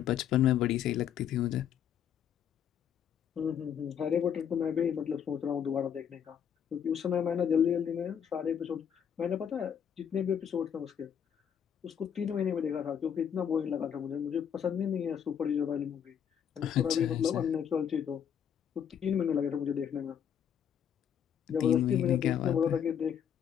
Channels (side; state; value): right; quieter; 8.5 dB